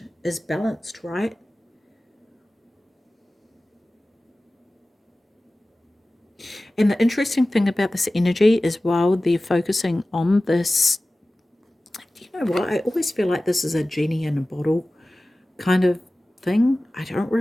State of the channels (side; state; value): both; normal; correlation 0.97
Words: right? And the interesting thing about this energy is, while they're focusing on this, you know what, I always feel like this is a genie in a bottle kind of thing. I don't